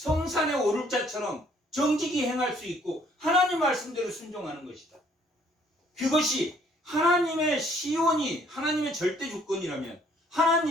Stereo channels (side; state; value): both; normal; correlation 0.62